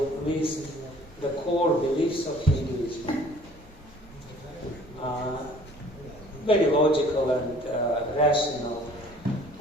list the core beliefs of Hinduism. Very logical and rational.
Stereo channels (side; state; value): both; normal; correlation 0.53